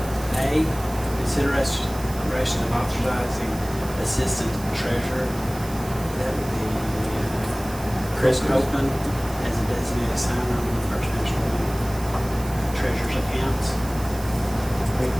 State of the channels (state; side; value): noise; right; hiss, 16 dB below the sound